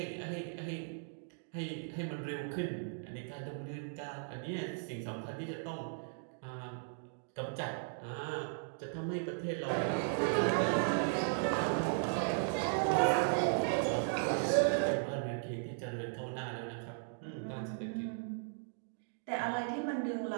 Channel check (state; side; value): silent; left; digital silence